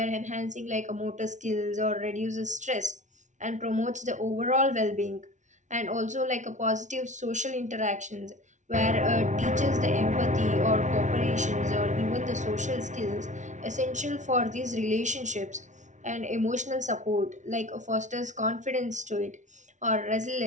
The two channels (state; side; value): late; left; 0.36 ms